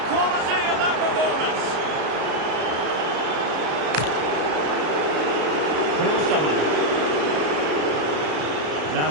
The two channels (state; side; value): late; left; 33 ms